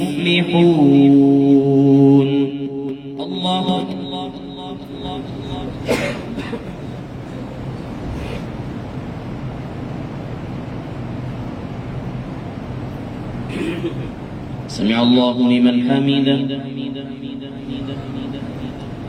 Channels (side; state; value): both; identical; correlation 1.00